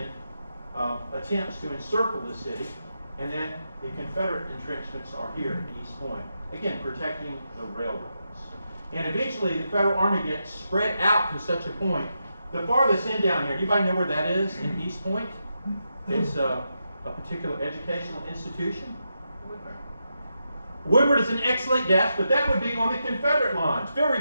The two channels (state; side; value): inverted; both; correlation -0.86